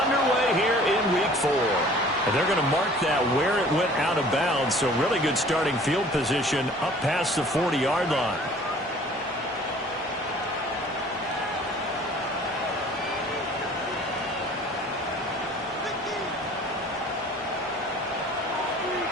underway here in Week 4. And they're going to mark that where it went out of bounds, so really good starting field position up past the 40-yard line.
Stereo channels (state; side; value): normal; both; correlation 0.50